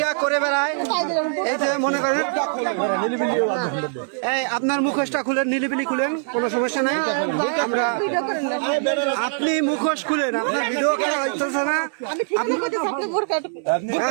করে বেড়ায় এই যে মনে করেন এই আপনার মুখোশটা খুলেন নিলিবিলি খুলেন কোনো সমস্যা নাই আমরা আপনি মুখোশ খুলেন আপনার ভিডিও করা হইতেছে না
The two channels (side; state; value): left; silent; 64 dB below the other